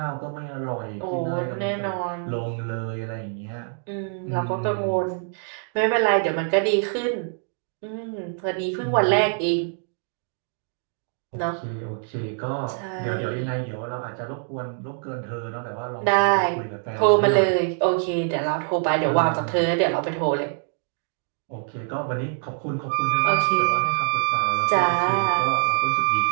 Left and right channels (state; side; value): silent; left; 57 dB below the other